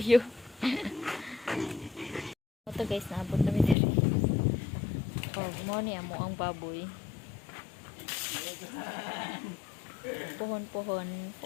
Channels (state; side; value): drops out; right; at 3.8 s